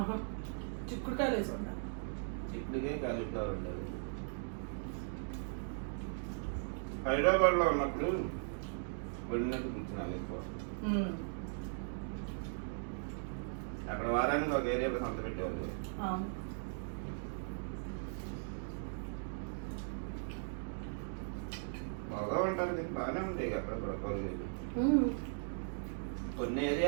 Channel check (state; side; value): silent; left; digital silence